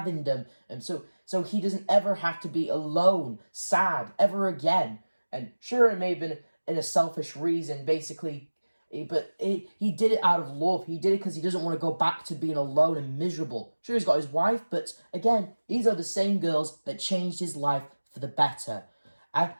them. And so he doesn't ever have to be alone, sad, ever again. And sure, it may have been in a selfish reason, basically, but he did it out of love. He did it because he doesn't want to go back to being alone and miserable. Sure, he's got his wife, but again, these are the same girls that changed his life for the better.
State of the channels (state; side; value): inverted; both; correlation -1.00